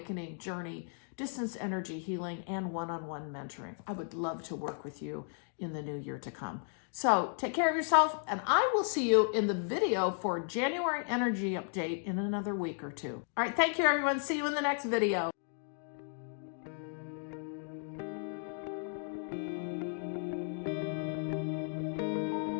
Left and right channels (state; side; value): silent; right; 55 dB below the other